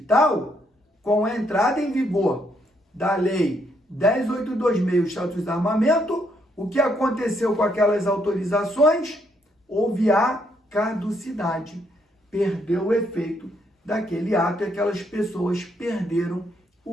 com a entrada em vigor da Lei 10.826, o Estatuto do Desarmamento, o que aconteceu com aquelas autorizações? Houve a caducidade, perdeu o efeito daquele ato e aquelas pessoas perderam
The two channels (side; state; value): both; normal; correlation 0.73